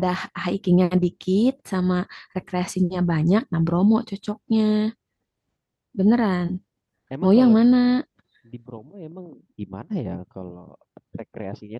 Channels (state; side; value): identical; both; correlation 1.00